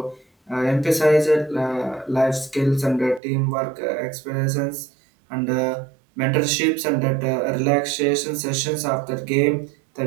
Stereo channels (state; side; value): drops out; left; at 3.2 s